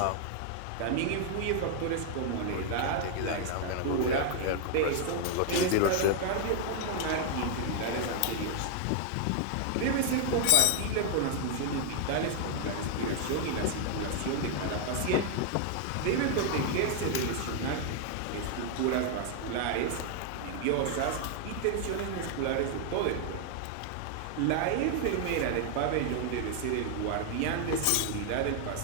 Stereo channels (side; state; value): both; different; correlation 0.00